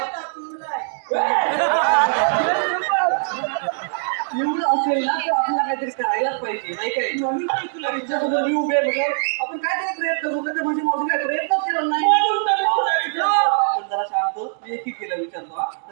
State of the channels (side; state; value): left; silent; digital silence